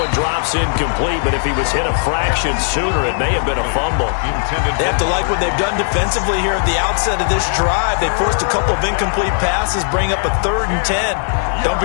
drops incomplete, but if he was hit a fraction sooner, it may have been a fumble. They have to like what they've done defensively here at the outset of this drive. They forced a couple of incomplete passes, bring up a 3rd and 10. Don't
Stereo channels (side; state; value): right; silent; digital silence